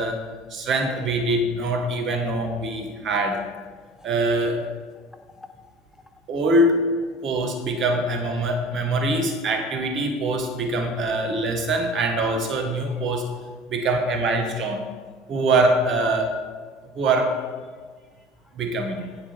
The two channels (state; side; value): normal; both; correlation 0.42